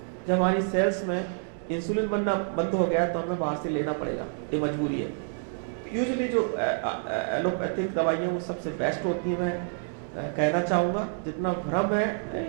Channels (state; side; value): silent; left; 59 dB below the other